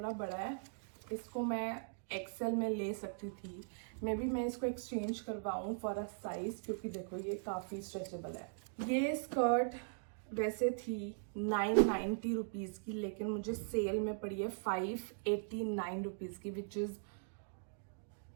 बड़ा है। इसको मैं XL में ले सकती थी। मे बी मैं इसको एक्सचेंज करवाऊँ फॉर अ साइज, क्योंकि देखो ये काफ़ी स्ट्रेचेबल है। ये स्कर्ट वैसे थी 990 रुपीज़ की, लेकिन मुझे सेल में पड़ी है 589 रुपीज़ की, which is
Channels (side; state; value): left; silent; digital silence